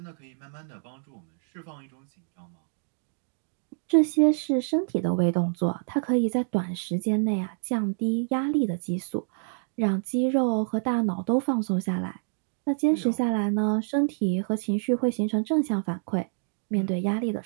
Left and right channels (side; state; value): left; silent; digital silence